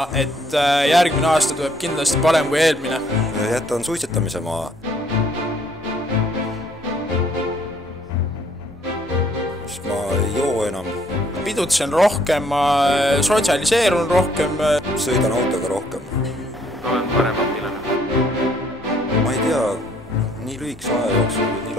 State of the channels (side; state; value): both; normal; correlation 0.64